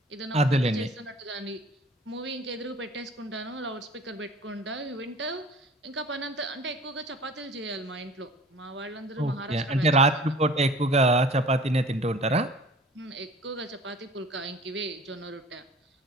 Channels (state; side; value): normal; both; correlation 0.47